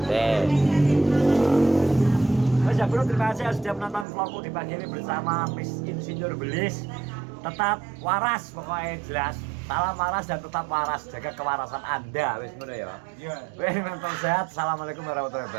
Mas ya bro, terima kasih sudah menonton vlogku di pagi ini bersama Miss Insinyur Belis. Tetap waras pokoknya jelas. Salam waras dan tetap waras. Jaga kewarasan Anda. Wis ngono ya. Iya. Wis mental sehat. Assalamualaikum warahmatullahi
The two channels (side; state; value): left; drops out; at 4.0 s